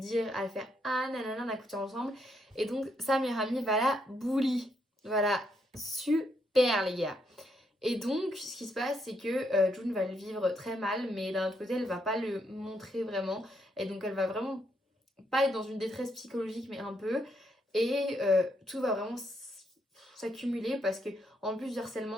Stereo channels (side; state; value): both; normal; correlation 0.76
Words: à le faire ah nanana, on a couché ensemble. Et donc, sa meilleure amie va la bully. Voilà, super les gars. Et donc, ce qui se passe, c'est que June va le vivre très mal, mais d'un autre côté, elle va pas le montrer vraiment. Et donc, elle va vraiment pas être dans une détresse psychologique, mais un peu. Et tout va vraiment s'accumuler parce que en plus du